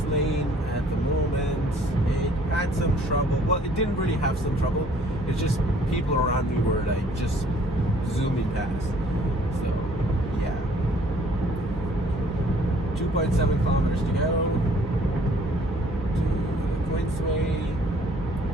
lane at the moment. It had some trouble. Well, it didn't really have some trouble. It's just people around me were like just zooming past. So, yeah. 2.7 kilometers to go to the Queensway.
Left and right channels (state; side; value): normal; both; correlation 0.58